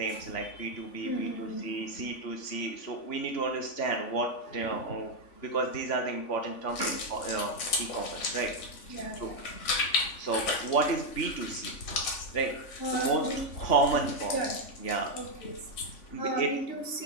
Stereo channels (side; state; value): right; late; 3.5 ms